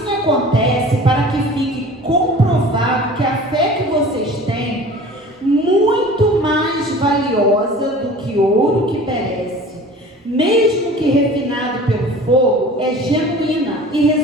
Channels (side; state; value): both; normal; correlation 0.42